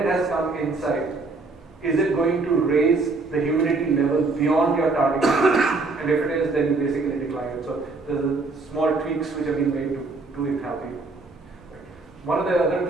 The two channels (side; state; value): left; quieter; 3.6 dB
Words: has come inside, is it going to raise the humidity level beyond your target humidity? And if it is, then you basically decline it. So there's small tweaks which have been made to enthalpy. One of the other